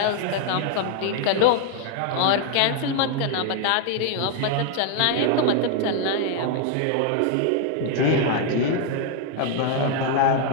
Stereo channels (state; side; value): different; both; correlation 0.00